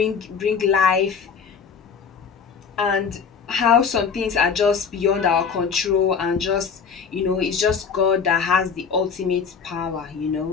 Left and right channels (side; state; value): right; quieter; 6.2 dB